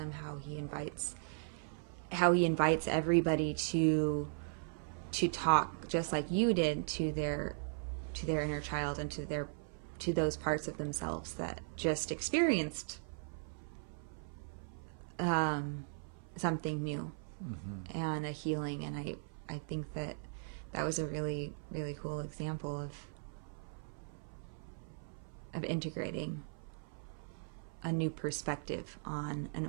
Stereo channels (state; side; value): silent; left; 52 dB below the other